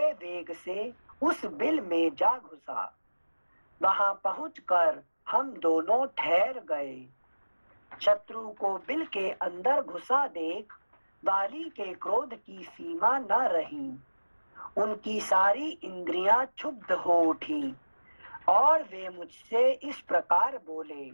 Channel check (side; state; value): both; inverted; correlation -1.00